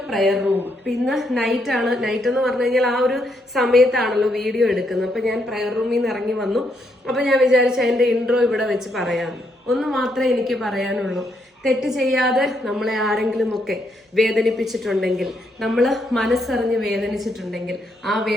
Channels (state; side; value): normal; both; correlation 0.76